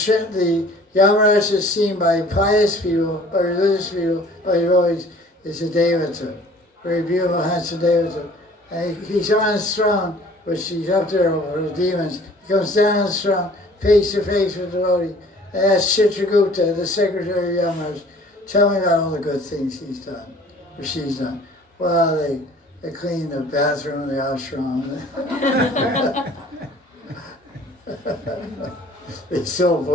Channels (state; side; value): normal; both; correlation 0.51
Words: Yamaraj is seen by pious people, by religious people, by devotees, is a Devata, very beautiful, handsome Devata. And he's on his throne, which he's up there over the demons. He comes down on his throne, face to face with the devotee. I asked Chitragupta, the secretary of Yamaraj, tell me about all the good things he's done, or she's done. Well, they clean the bathroom, the ashram. They sell